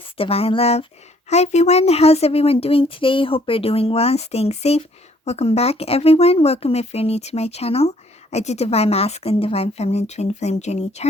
Divine Love. Hi everyone, how's everyone doing today? Hope you're doing well and staying safe. Welcome back everyone. Welcome if you're new to my channel. I do Divine Masculine, Divine Feminine, Twin Flame Journey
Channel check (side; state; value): both; normal; correlation 0.63